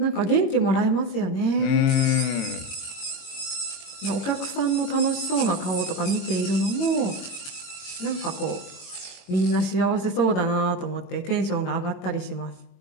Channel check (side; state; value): right; late; 22 ms